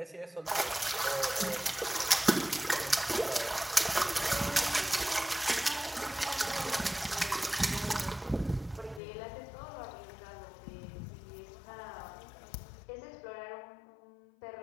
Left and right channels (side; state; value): right; drops out; at 9.0 s